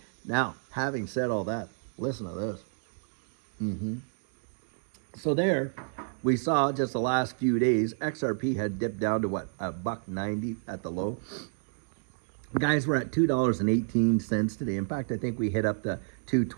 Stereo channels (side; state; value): left; silent; digital silence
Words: Now, having said all that, listen to this. So there, we saw just the last few days, XRP had dipped down to what, $1.90 at the low. Guys, we're at $2.18 today. In fact, I think we hit up to